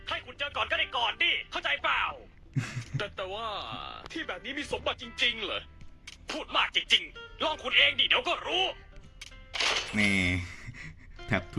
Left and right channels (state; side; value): identical; both; correlation 1.00